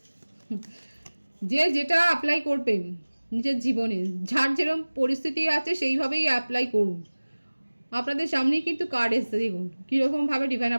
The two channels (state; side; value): inverted; both; correlation -1.00